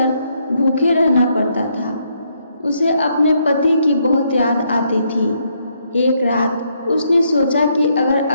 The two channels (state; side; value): inverted; both; correlation -0.74